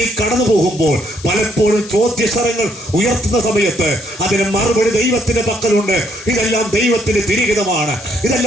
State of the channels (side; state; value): left; noise; hiss, 17 dB below the sound